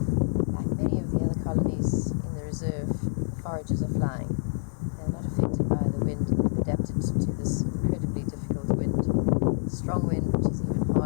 like many of the other colonies in the reserve, foragers are flying. They're not affected by the wind. They've adapted to this incredibly difficult wind. Strong wind, which is even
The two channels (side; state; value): right; silent; digital silence